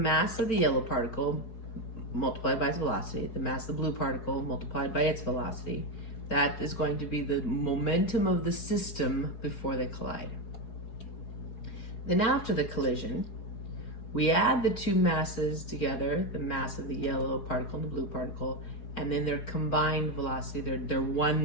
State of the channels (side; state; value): right; late; 4.8 ms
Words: of the yellow particle multiplied by its velocity, the mass of the blue particle multiplied by its velocity, that is going to be the momentum of the system before they collide. Then after the collision, we add the two masses together, the mass of the yellow particle and the blue particle, and then their combined velocity, their